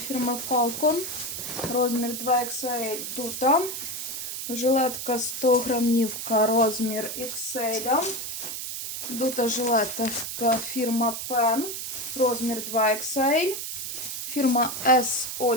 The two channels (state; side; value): noise; right; hiss, 5 dB below the sound